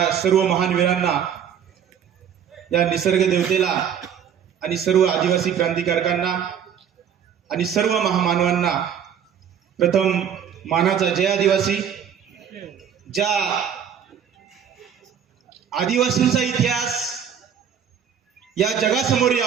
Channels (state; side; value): quieter; left; 8.3 dB